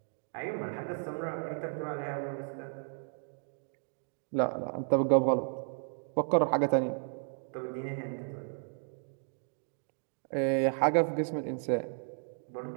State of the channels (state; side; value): silent; left; 55 dB below the other